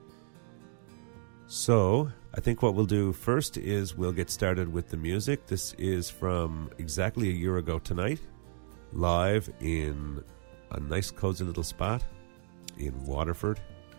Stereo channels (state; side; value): silent; left; digital silence